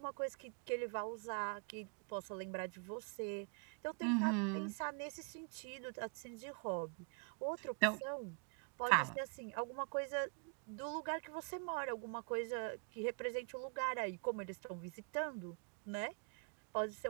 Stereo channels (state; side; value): quieter; left; 39.3 dB